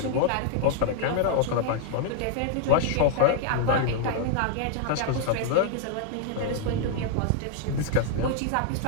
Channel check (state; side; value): different; both; correlation 0.00